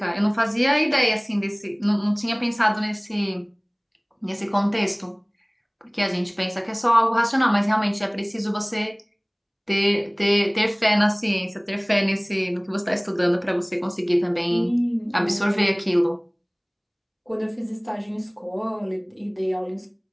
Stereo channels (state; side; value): identical; both; correlation 1.00